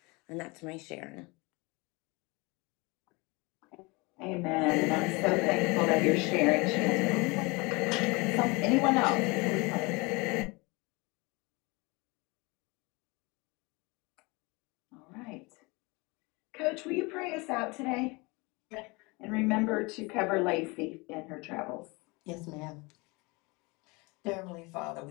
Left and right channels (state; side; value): quieter; right; 26.4 dB